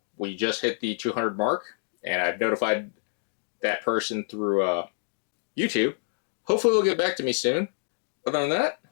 We just hit the 200 mark, and I've notified that person through YouTube. Hopefully they'll get back to me soon. Other than that,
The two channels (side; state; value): right; silent; digital silence